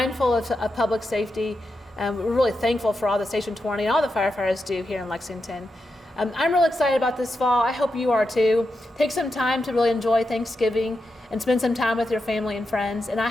of public safety. We're really thankful for all the Station 20 and all the firefighters do here in Lexington. I'm really excited about this fall. I hope you are too. Take some time to really enjoy Thanksgiving and spend some time with your family and friends. And I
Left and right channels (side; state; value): both; normal; correlation 0.87